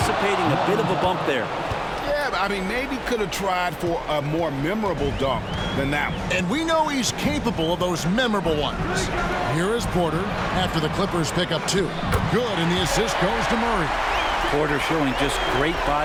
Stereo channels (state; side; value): identical; both; correlation 1.00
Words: a bit of a bump there. Yeah, I mean, maybe could have tried for a more memorable dunk than that one. And we know he's capable of those memorable ones. Here is Porter after the Clippers pick up 2. Good, and the assist goes to Murray. Porter showing just great